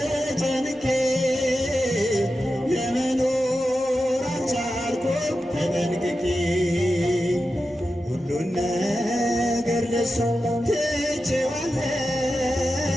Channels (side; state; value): both; normal; correlation 0.91